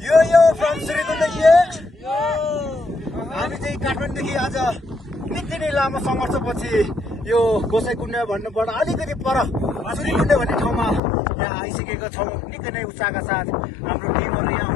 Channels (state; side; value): drops out; right; at 11.0 s